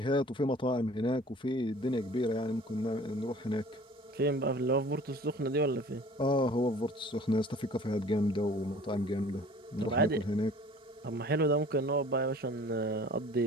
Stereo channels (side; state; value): both; normal; correlation 0.48